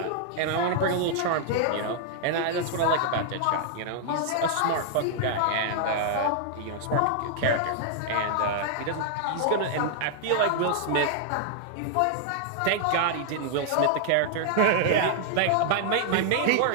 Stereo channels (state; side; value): different; both; correlation -0.01